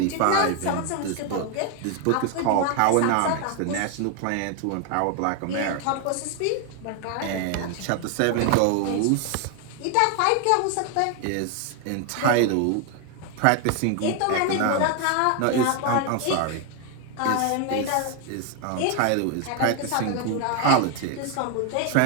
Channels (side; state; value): both; different; correlation 0.01